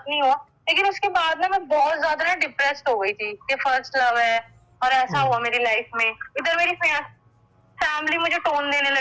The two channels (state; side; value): identical; both; correlation 1.00